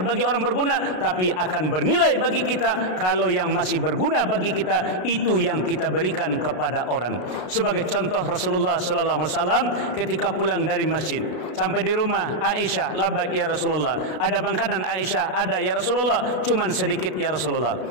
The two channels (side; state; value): right; late; 33 ms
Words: bagi orang berguna, tapi akan bernilai bagi kita kalau yang masih berguna bagi kita itu yang kita berikan kepada orang. Sebagai contoh, Rasulullah sallallahu alaihi wasallam ketika pulang dari masjid sampai di rumah Aisyah, labbaik ya Rasulullah. Ada makanan? Aisyah, ada ya Rasulullah, cuman sedikit ya Rasulullah.